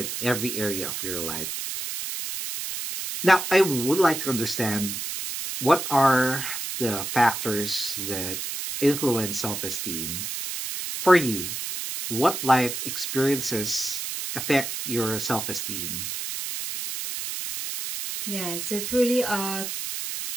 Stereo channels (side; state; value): right; noise; hiss, 5 dB below the sound